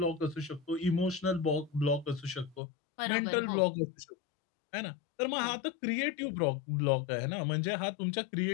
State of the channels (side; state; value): right; drops out; at 2.6 s